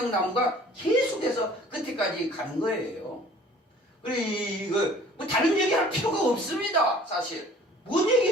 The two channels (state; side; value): normal; both; correlation 0.51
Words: 계속해서 끝에까지 가는 거예요. 그래 이거 뭐 다른 얘기할 필요가 없습니다. 사실 뭔